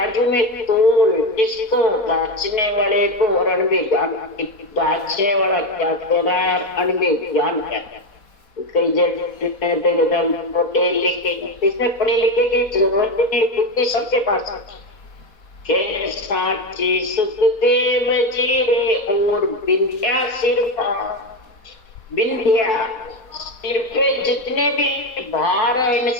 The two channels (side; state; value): right; late; 4.1 ms